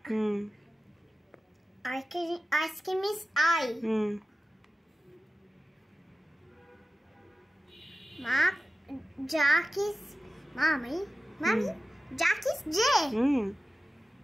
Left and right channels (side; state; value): both; normal; correlation 0.94